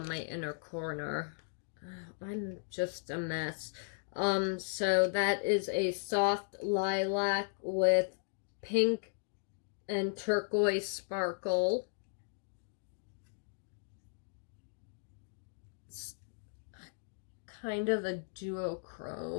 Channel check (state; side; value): silent; right; digital silence